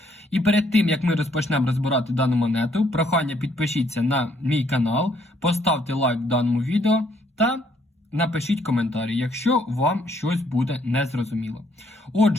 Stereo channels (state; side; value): normal; both; correlation 0.68